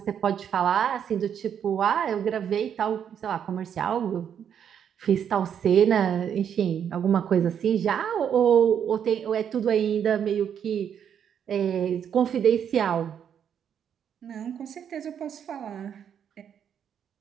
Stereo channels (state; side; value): quieter; left; 8.5 dB